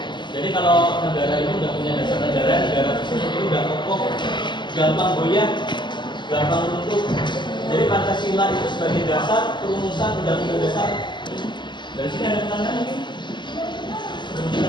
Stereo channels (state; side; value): late; right; 0.22 ms